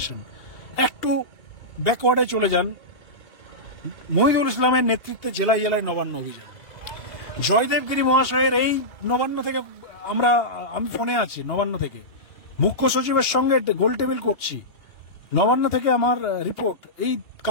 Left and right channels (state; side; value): late; right; 2.5 ms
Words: একটু ব্যাকওয়ার্ডে চলে যান, মহিদুল ইসলামের নেতৃত্বে জেলায় জেলায় নবান্ন অভিযান, জয়দেব গিরি মহাশয়ের এই নবান্ন থেকে আমি ফোনে আছি, নবান্ন থেকে মুখ্য সচিবের সঙ্গে গোল টেবিল করছি, নবান্ন থেকে আমার রিপোর্ট, এই